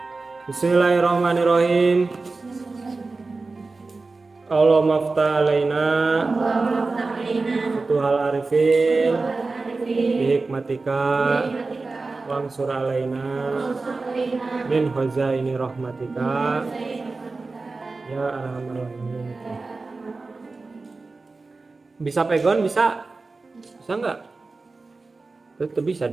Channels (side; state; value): left; quieter; 3.7 dB